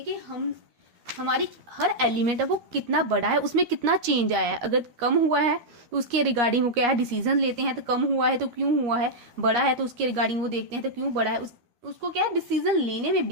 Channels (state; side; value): late; left; 12 ms